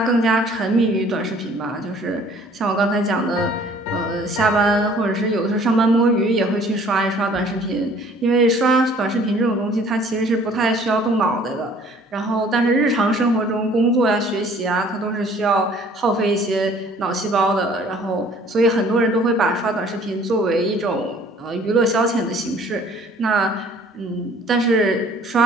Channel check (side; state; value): both; normal; correlation 0.54